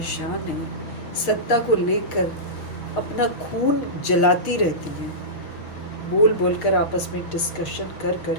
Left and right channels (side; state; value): right; late; 6.4 ms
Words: हैं, सत्ता को लेकर अपना खून जलाती रहती हैं, बोल बोलकर आपस में डिस्कशन कर